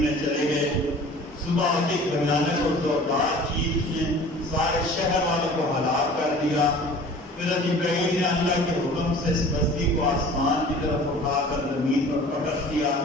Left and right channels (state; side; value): normal; both; correlation 0.44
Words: چلے گئے. صبح کی بھیانک اور زوردار چیخ نے سارے شہر والوں کو ہلاک کر دیا. پھر جبرائیل نے اللہ کے حکم سے اس بستی کو آسمان کی طرف اٹھا کر زمین پر پٹک دیا